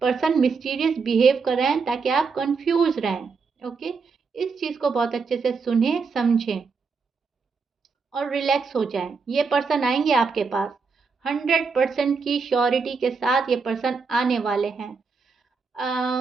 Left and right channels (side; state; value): left; quieter; 4.9 dB